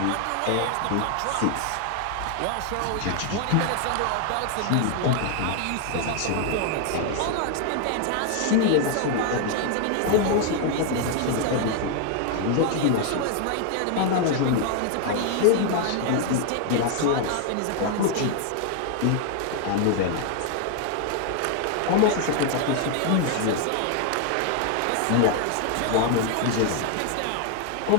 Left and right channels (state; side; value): different; both; correlation 0.00